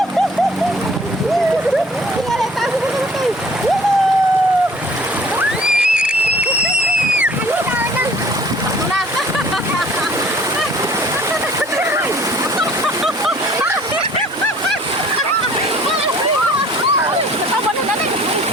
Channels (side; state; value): both; normal; correlation 0.53